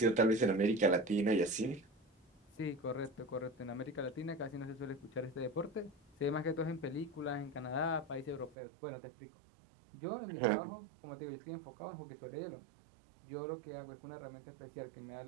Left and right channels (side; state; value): left; drops out; at 8.6 s